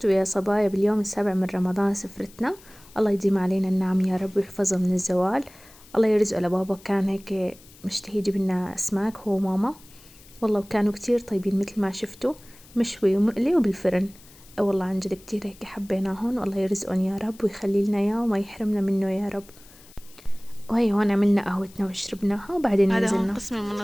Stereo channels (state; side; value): noise; left; hiss, 24 dB below the sound